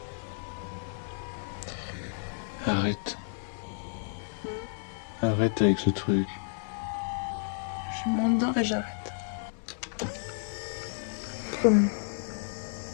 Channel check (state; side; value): silent; right; 57 dB below the other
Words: Arrête. Arrête avec ce truc. Je m'endors et j'arrête. Promis.